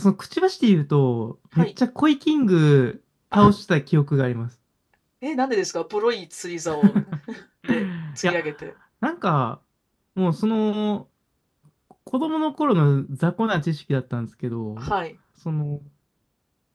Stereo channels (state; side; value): identical; both; correlation 1.00